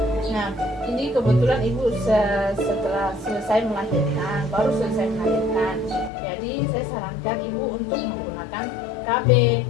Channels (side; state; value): right; drops out; at 6.1 s